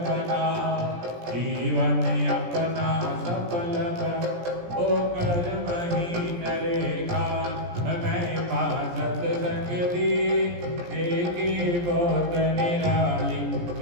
बना जीवन अपना सफल बना ओ कर महीन रेखा महिमा सत्संग दी देखी बहुत निराली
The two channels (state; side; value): late; left; 17 ms